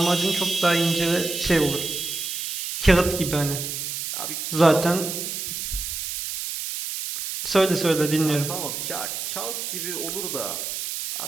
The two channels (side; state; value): right; noise; hiss, 4 dB below the sound